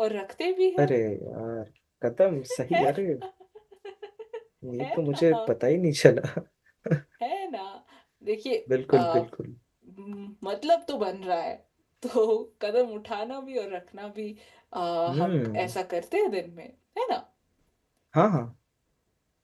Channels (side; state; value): both; identical; correlation 1.00